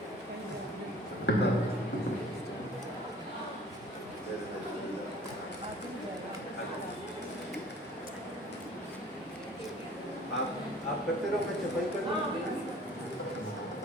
आप करते रहो, मैं चपाई कर दूं।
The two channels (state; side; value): normal; both; correlation 0.50